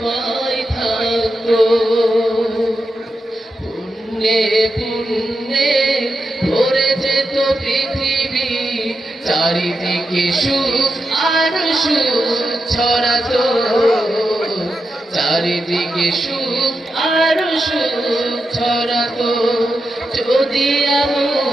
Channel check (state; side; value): normal; both; correlation 0.88